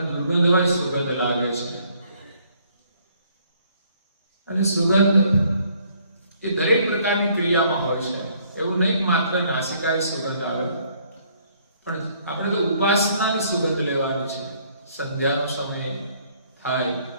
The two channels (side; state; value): both; inverted; correlation -0.64